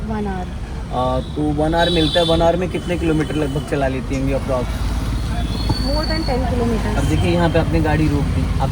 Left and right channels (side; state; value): both; identical; correlation 1.00